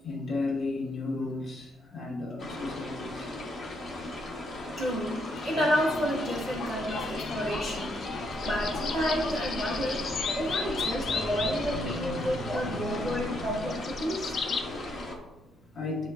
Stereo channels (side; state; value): both; normal; correlation 0.75